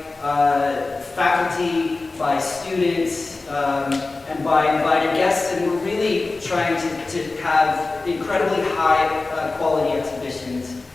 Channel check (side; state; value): right; quieter; 3.5 dB